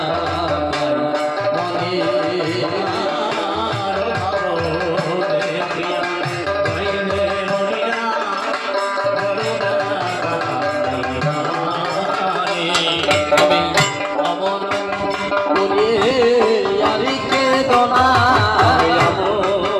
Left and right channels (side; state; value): both; identical; correlation 1.00